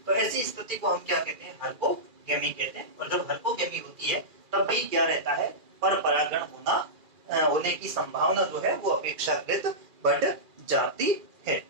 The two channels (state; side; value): late; left; 2.3 ms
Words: तो ऐसी स्थिति को हम क्या कहते हैं? हर्कोगेमी कहते हैं। और जब हर्कोगेमी होती है तब भी क्या रहता है? पर परागण होने की संभावना जो है वो अपेक्षाकृत बढ़ जाती है।